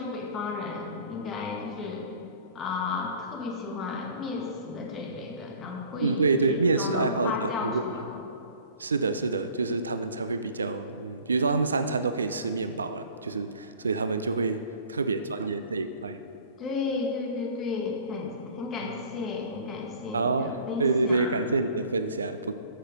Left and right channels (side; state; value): both; inverted; correlation -0.48